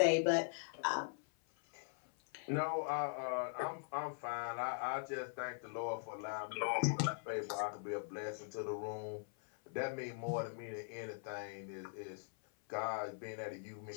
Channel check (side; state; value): right; silent; 50 dB below the other